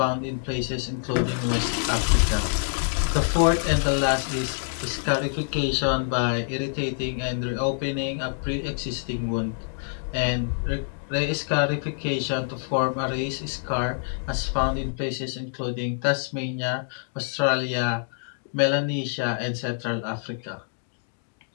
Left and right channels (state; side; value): silent; right; digital silence